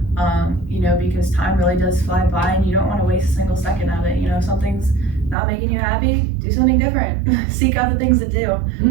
Because time really does fly by, and you don't want to waste a single second of it. If something's not making you happy, do something different. Seek out the things that do.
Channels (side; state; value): left; drops out; at 5.4 s